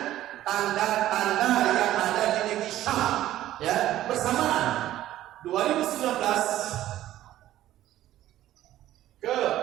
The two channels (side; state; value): left; quieter; 13.7 dB